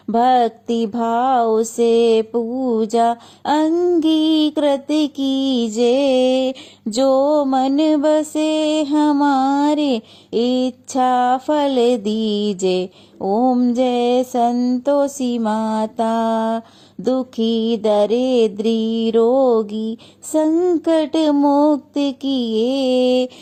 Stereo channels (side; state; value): both; identical; correlation 1.00